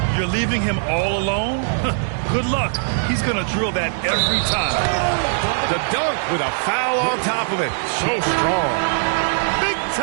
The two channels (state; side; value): silent; left; 62 dB below the other